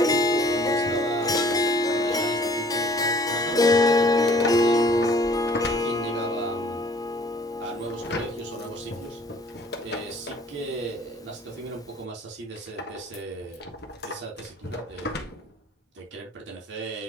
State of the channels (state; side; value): normal; both; correlation 0.54